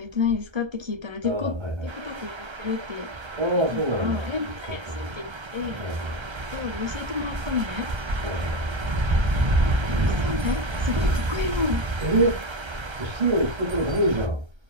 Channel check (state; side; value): late; left; 1.3 ms